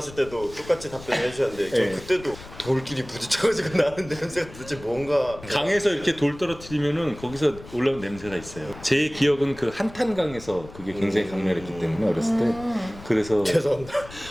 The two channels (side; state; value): left; noise; rumble, 17 dB below the sound